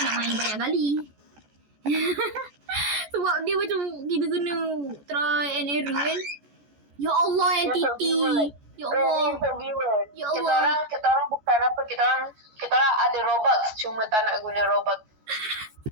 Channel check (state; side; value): late; left; 14 ms